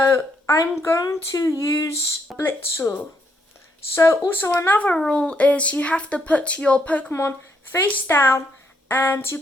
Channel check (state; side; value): normal; both; correlation 0.74